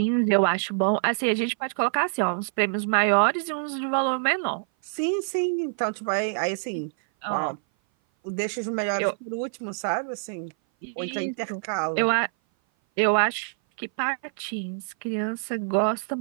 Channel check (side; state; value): left; silent; 57 dB below the other